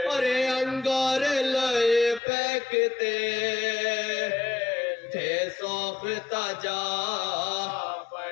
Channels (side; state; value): right; drops out; at 2.2 s